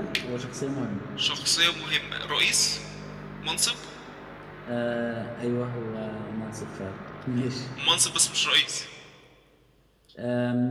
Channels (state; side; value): identical; both; correlation 1.00